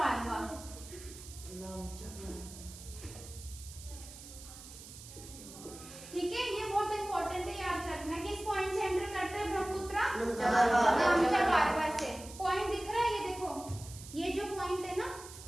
ठीक है, ये बहुत इंपॉर्टेंट है, याद रखना। किस पॉइंट से एंटर करता है ब्रह्मपुत्र? नामचा बारवा से। पॉइंट दिख रहा है, ये देखो, ये जो पॉइंट है ना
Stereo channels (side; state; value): right; noise; hiss, 15 dB below the sound